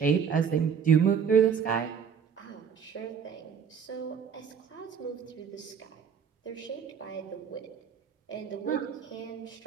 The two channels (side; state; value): left; quieter; 7.0 dB